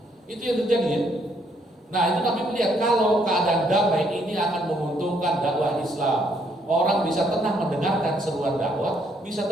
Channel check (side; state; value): both; normal; correlation 0.70